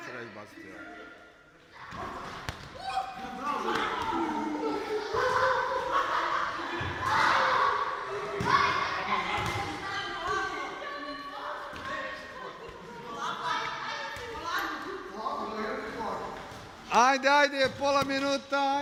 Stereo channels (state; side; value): identical; both; correlation 1.00